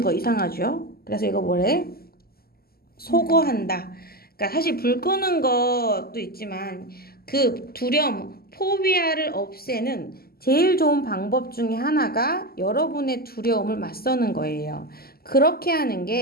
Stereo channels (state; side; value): late; right; 0.45 ms